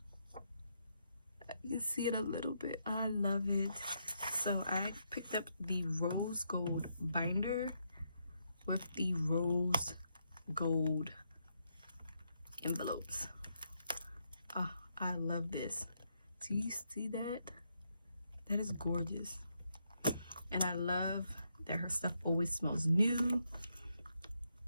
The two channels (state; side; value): inverted; both; correlation -0.79